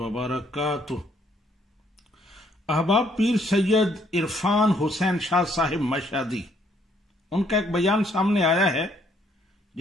احباب، پیر سید عرفان حسین شاہ صاحب مشہدی، ان کا ایک بیان سامنے آیا ہے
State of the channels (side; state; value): both; normal; correlation 0.68